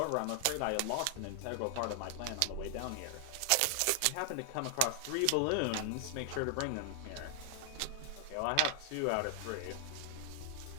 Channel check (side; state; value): both; different; correlation 0.00